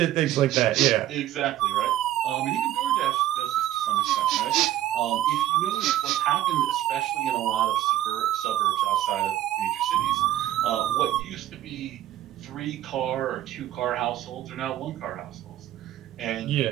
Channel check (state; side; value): quieter; left; 13.2 dB